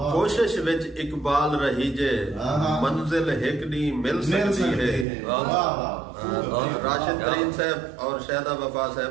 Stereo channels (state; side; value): drops out; left; at 5.1 s